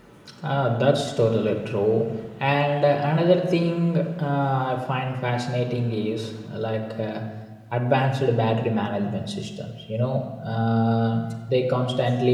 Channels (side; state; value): both; identical; correlation 1.00